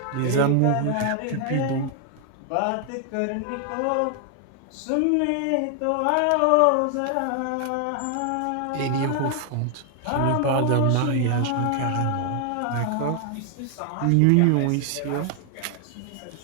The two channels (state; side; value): different; both; correlation 0.00